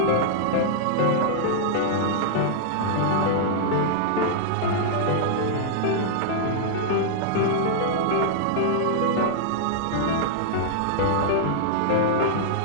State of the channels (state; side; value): different; both; correlation -0.02